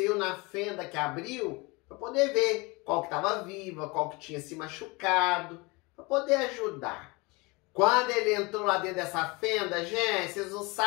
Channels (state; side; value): quieter; right; 25.8 dB